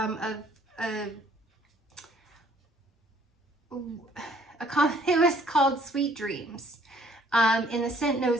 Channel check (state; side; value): normal; both; correlation 0.61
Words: it was called Sweet Dreams. And the scent